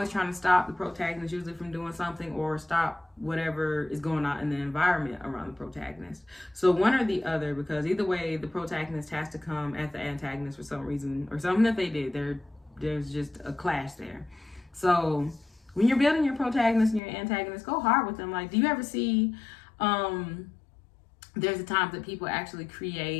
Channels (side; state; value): right; drops out; at 17.0 s